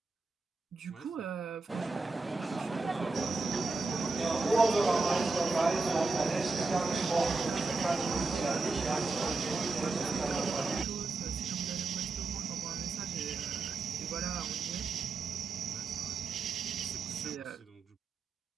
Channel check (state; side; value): quieter; left; 3.7 dB